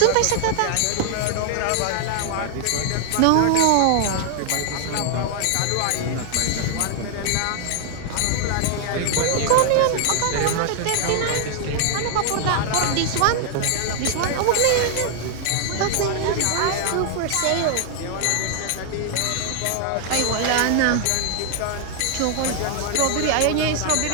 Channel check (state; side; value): different; both; correlation 0.00